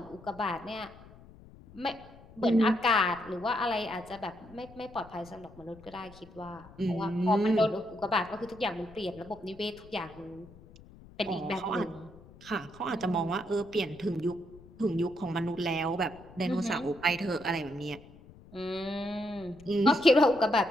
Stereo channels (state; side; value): noise; left; rumble, 21 dB below the sound